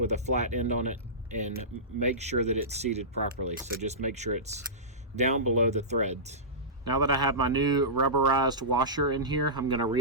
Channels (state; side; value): normal; both; correlation -0.18